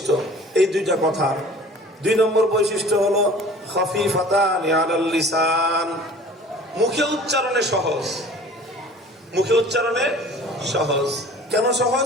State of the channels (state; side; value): normal; both; correlation 0.46